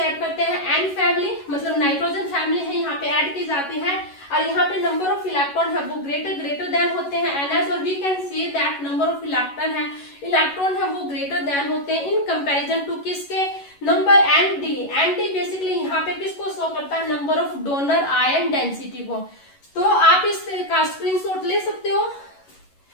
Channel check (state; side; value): late; right; 11 ms